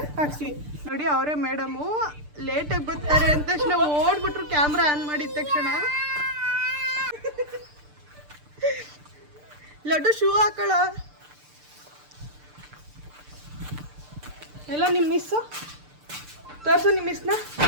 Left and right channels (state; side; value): late; left; 6.7 ms